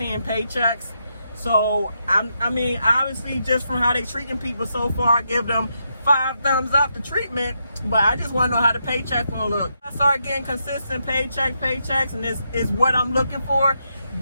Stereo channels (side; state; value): both; inverted; correlation -0.81